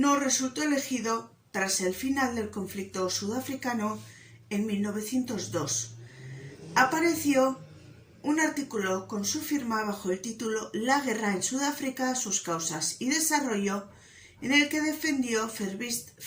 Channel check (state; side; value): identical; both; correlation 1.00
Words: resultó elegido tras el final del conflicto sudafricano en 1902. Apareció un artículo con su firma bajo el título La guerra en Sudáfrica, sus causas y desarrollo, en el que defendió